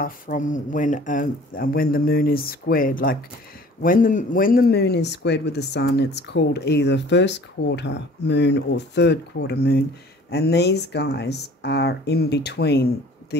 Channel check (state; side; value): normal; both; correlation 0.49